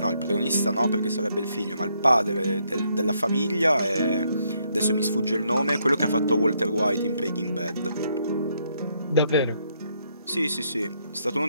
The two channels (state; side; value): inverted; both; correlation -0.74